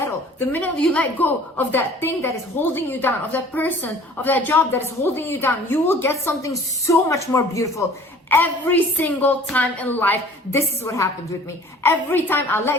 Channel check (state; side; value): normal; both; correlation 0.49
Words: The minute you let go of that thing that is holding you down, of that person, of that job that is holding you down, you will get something so much more beautiful. Every single time in life, this is what happened with me. Every time I